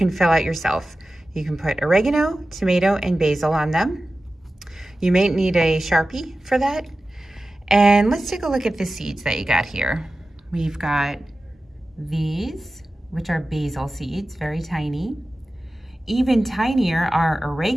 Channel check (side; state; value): both; normal; correlation 0.95